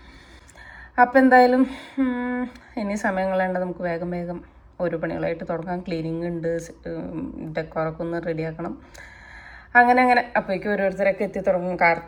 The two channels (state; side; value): identical; both; correlation 1.00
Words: അപ്പോൾ എന്തായാലും ഇനി സമയം കളയേണ്ട, നമുക്ക് വേഗം വേഗം ഓരോ പണികളായിട്ട് തുടങ്ങാം. ക്ലീനിങ് ഉണ്ട്, ഡെക്കോറൊക്കെ ഒന്ന് റെഡിയാക്കണം. അങ്ങനെ അപ്പോഴേക്കും ഓരോരുത്തരൊക്കെ എത്തി തുടങ്ങും.